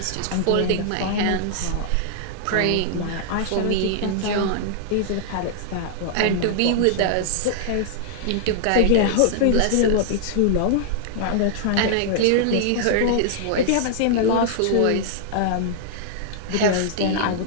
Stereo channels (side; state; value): both; different; correlation -0.01